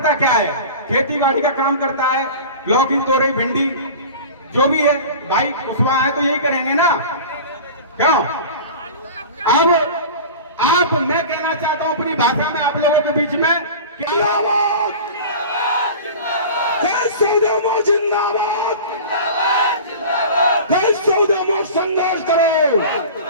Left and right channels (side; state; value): both; inverted; correlation -0.36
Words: क्या है? खेती बाड़ी का काम करता है, लौकी, तोरई, भिंडी जो भी है। भाई कुशवाहा है तो यही करेंगे ना, क्यों? अब आप, मैं कहना चाहता हूं अपनी भाषा में आप लोगों के बीच में, जिंदाबाद, जिंदाबाद, जिंदाबाद, संघर्ष करो,